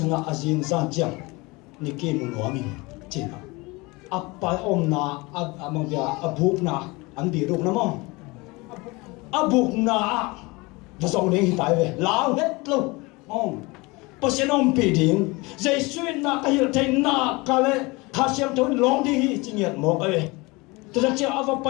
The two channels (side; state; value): right; quieter; 24.6 dB